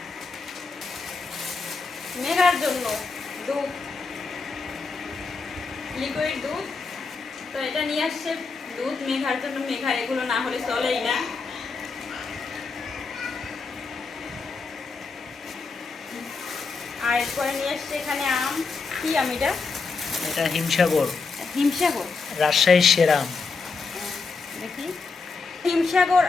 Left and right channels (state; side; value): quieter; right; 4.5 dB